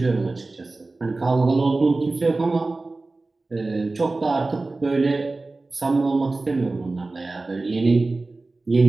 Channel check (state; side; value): quieter; left; 3.3 dB